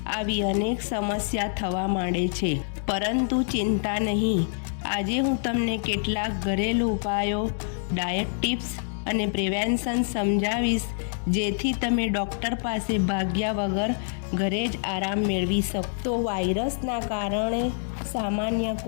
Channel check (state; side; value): silent; right; digital silence